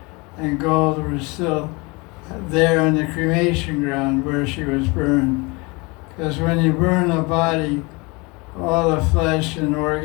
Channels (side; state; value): right; quieter; 27.0 dB